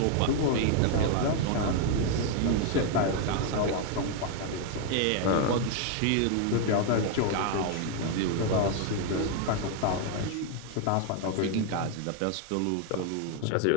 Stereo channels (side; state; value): both; different; correlation 0.00